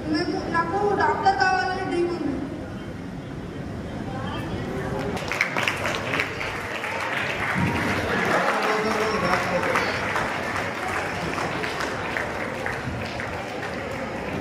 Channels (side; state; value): both; identical; correlation 1.00